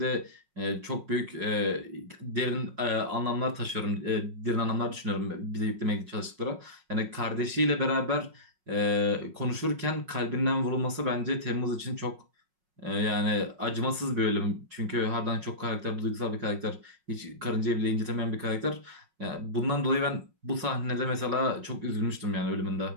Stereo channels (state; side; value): late; left; 5.5 ms